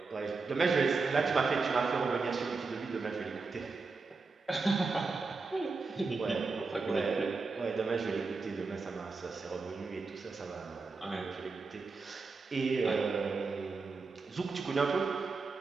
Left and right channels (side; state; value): left; quieter; 4.3 dB